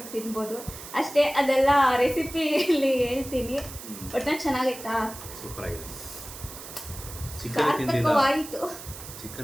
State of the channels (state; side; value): noise; right; hiss, 13 dB below the sound